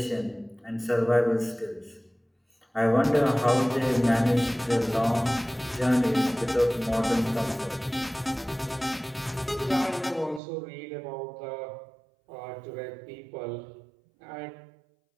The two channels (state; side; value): drops out; left; at 10.4 s